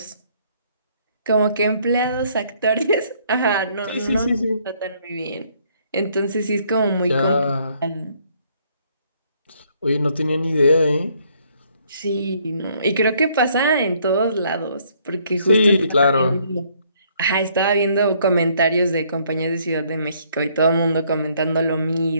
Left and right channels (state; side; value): inverted; both; correlation -0.66